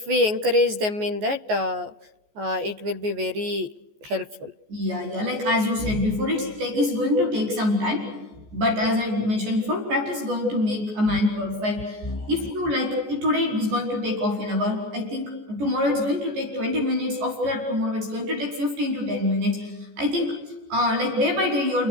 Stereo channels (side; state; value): left; late; 14 ms